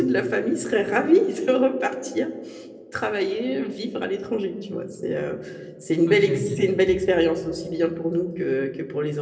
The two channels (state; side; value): identical; both; correlation 1.00